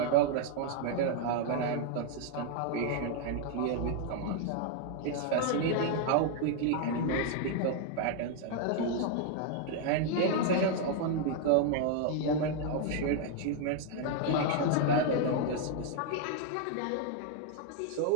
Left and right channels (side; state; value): both; different; correlation 0.00